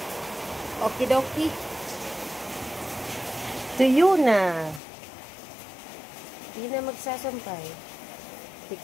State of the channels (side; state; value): right; drops out; at 4.8 s